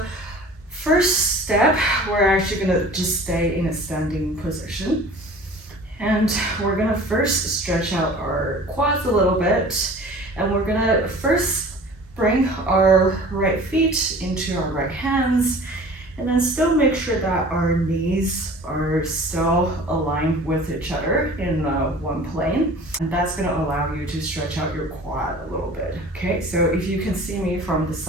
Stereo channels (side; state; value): both; normal; correlation 0.44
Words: first step, we're actually gonna just stay in a standing position. And we're gonna first stretch out our quads a little bit. And we're gonna first bring our right feet into our right hands. And then still make sure that our knees are still aligned with each other in one plane. And that's gonna allow you to stretch out your quad a little bit. Okay, so if you can see me from the